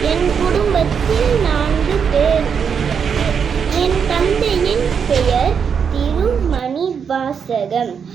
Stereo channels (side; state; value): left; quieter; 6.8 dB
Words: என் குடும்பத்தில் 4 பேர் உள்ளனர். என் தந்தையின் பெயர் திருமணிவாசகம்.